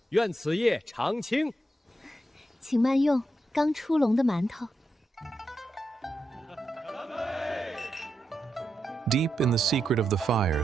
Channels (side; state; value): both; normal; correlation 0.85